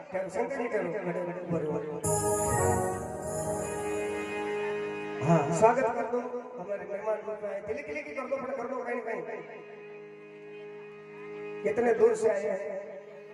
ठहरो शंकर जी, ठहरो, हाँ स्वागत कर दो हमारे मेहमान रूप में। दिल्ली के लिए कर दो, कर दो कहीं कहीं, कितने दूर से आए हैं।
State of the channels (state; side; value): identical; both; correlation 1.00